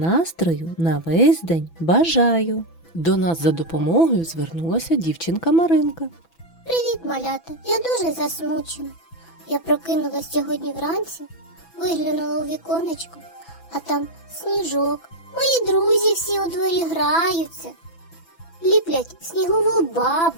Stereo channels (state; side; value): late; right; 6.0 ms